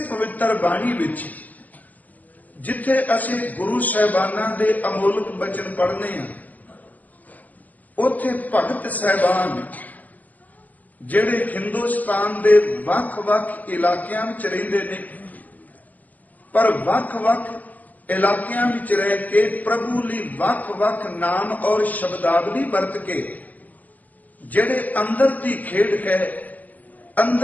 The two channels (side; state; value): right; late; 0.080 ms